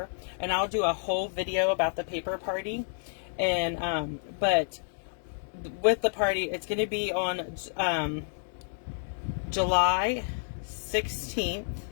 And I'll do a whole video about the paper party. And but with the party, it's going to be on July 16th.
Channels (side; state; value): right; silent; digital silence